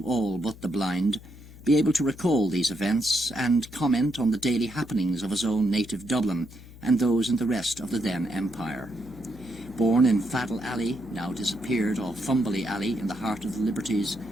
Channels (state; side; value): noise; left; hum, 18 dB below the sound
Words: all but the blind, be able to recall these events and comment on the daily happenings of his own native Dublin and those in the rest of the then Empire. Born in Faddle Alley, now disappeared, or Fumbley Alley in the heart of the Liberties,